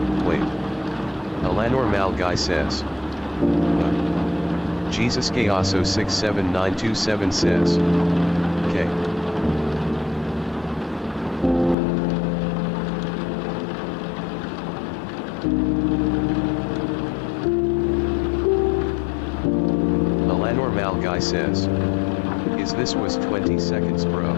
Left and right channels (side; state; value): right; drops out; at 11.8 s